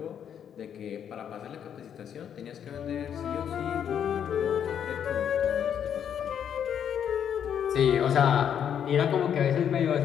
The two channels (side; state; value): right; quieter; 8.7 dB